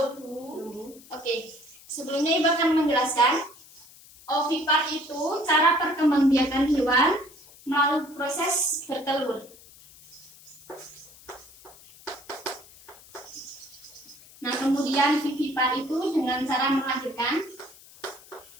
Oke. Sebelumnya Ibu akan menjelaskan. Ovipar itu cara perkembangbiakan hewan melalui proses bertelur. Nah, kemudian vivipar itu dengan cara melahirkan.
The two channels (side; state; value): left; noise; hiss, 22 dB below the sound